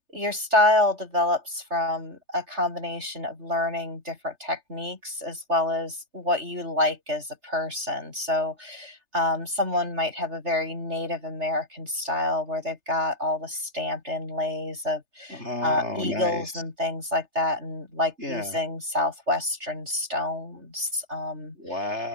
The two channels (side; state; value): left; late; 3.3 ms